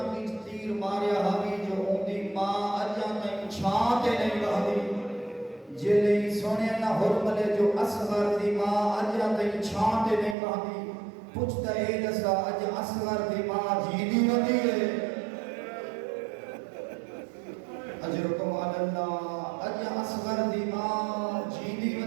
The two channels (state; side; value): drops out; left; at 10.4 s